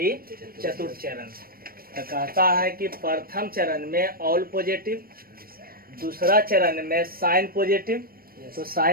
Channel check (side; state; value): left; late; 0.43 ms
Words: चतुर्थ चरण। तो कहता है कि प्रथम चरण में ऑल पॉजिटिव, दूसरा चरण में साइन पॉजिटिव, तो